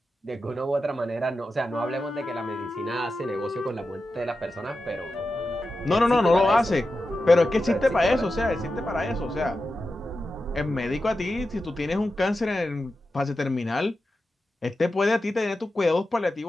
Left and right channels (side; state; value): both; normal; correlation 0.91